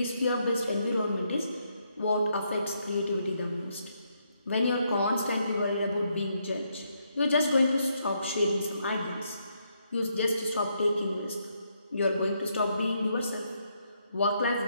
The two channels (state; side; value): inverted; both; correlation -0.77